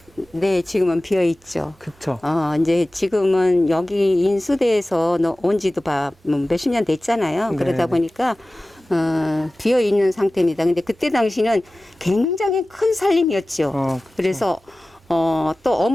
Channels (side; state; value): both; normal; correlation 0.97